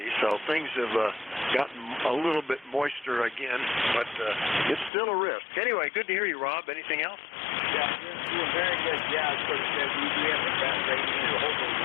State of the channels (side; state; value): right; drops out; at 4.9 s